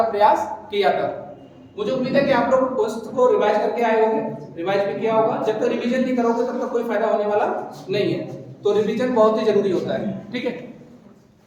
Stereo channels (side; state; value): both; identical; correlation 1.00